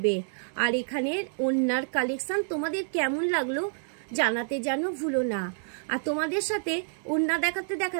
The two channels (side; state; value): left; silent; digital silence